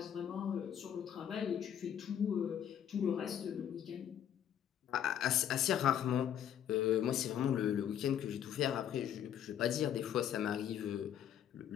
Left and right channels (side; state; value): right; quieter; 9.8 dB